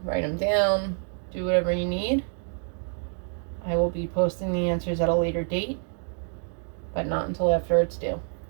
write them down, do whatever you need. I will be posting the answers at a later date, but not until after it's due.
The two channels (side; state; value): left; silent; 56 dB below the other